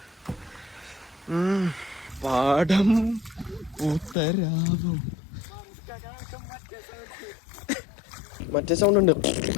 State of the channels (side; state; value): right; drops out; at 4.2 s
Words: പാടം ഉത്തരാവും. മറ്റേ സൗണ്ട് ഉണ്ട്,